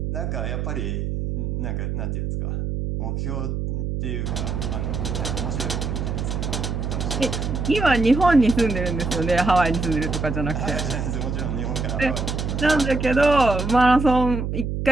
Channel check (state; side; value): noise; right; hum, 2 dB below the sound